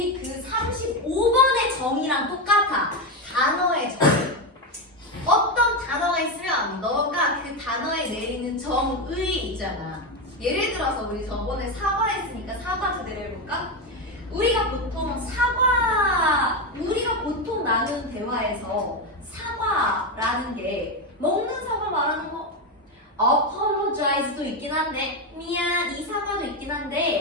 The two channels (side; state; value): both; normal; correlation 0.11